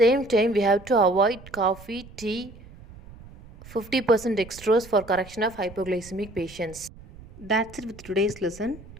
time, we have to avoid coffee, tea, 50% dextrose for correction of hypoglycemic patients. That's it with today's lesson.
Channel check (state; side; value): noise; right; rumble, 19 dB below the sound